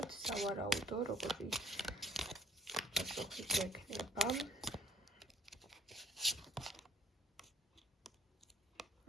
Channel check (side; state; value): both; normal; correlation 0.60